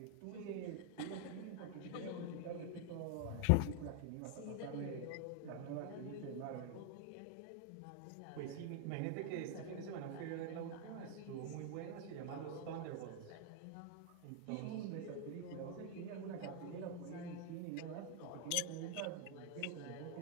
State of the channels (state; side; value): different; both; correlation 0.00